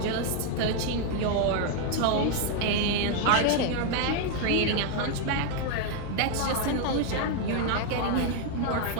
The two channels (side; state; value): both; different; correlation 0.00